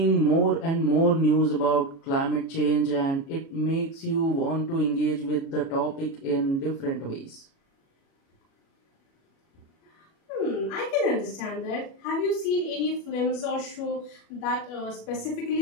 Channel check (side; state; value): right; late; 36 ms